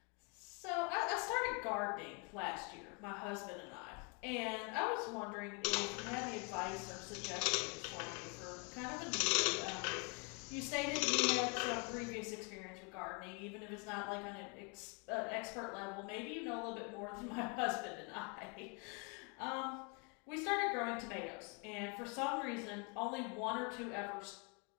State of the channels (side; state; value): right; quieter; 33.9 dB